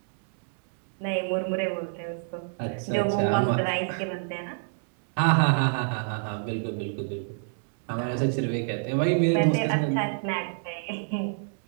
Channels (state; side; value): silent; left; digital silence